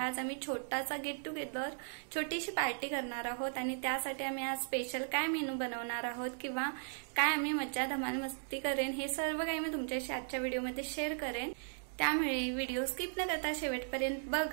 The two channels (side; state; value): left; silent; digital silence